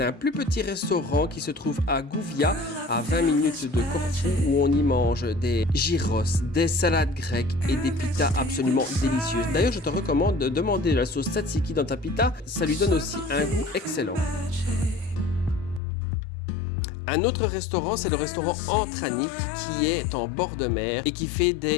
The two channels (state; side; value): drops out; right; at 15.8 s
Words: un plus petit restaurant qui se trouve à Gouvia, à 20 minutes de Corfou, où on y mange des gyros, des salades grecques et des pitas absolument délicieuses. D'ailleurs, je te recommande de demander la sauce tzatziki dans ta pita, ça lui donne aussi un goût excellent. Un autre restaurant, c'est le restaurant Antranik qui est en bord de mer et qui fait